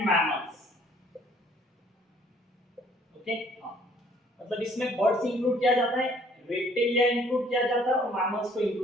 mammals. Okay, मतलब इसमें बर्ड्स इंक्लूड किया जाता है, रेप्टेलिया इंक्लूड किया जाता है और मैमल्स को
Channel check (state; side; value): normal; both; correlation 0.60